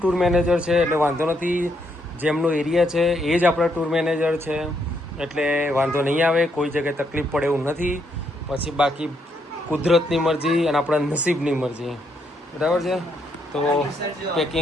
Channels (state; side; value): normal; both; correlation 0.76